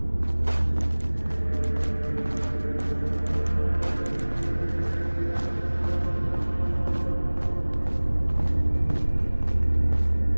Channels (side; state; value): both; inverted; correlation -1.00